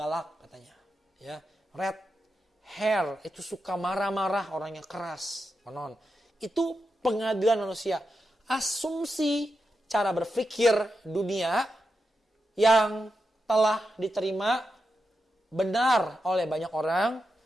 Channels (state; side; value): normal; both; correlation 0.88